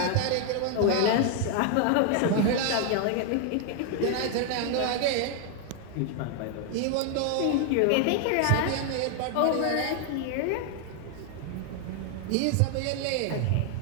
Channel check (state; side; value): different; both; correlation 0.00